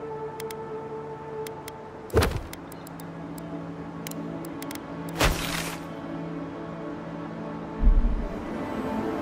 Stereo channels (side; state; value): both; identical; correlation 1.00